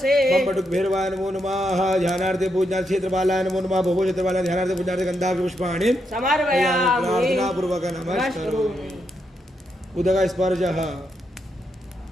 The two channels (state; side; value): normal; both; correlation 0.81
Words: ओम बटुक भैरवाय नमो नमः। ध्यानार्थे पूजनार्थ क्षेत्रपालाय नमो नमः। भोगो क्षेत्रपालाय ध्यानार्थे पूजनार्थ गंधाक्षि पुष्पाणि समर्पयामि प्रार्थना पूर्वक नमस्करोमि। उदक स्पर्शः।